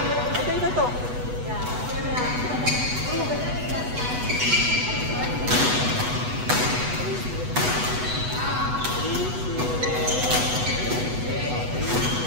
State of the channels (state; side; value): late; left; 8.1 ms